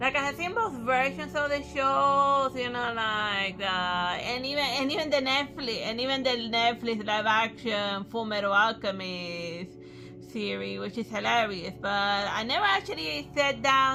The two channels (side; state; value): both; identical; correlation 1.00